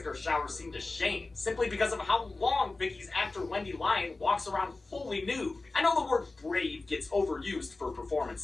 shower scene to shame, simply because of how long Vicki's actor Wendy Lyon walks around fully nude. I know the word brave gets overused for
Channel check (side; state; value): right; quieter; 3.4 dB